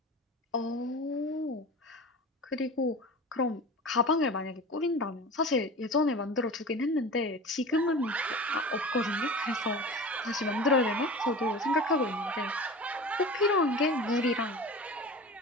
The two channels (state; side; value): normal; both; correlation 0.34